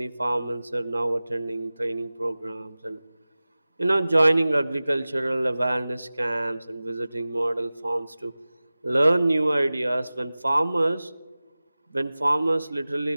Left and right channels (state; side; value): inverted; both; correlation -0.97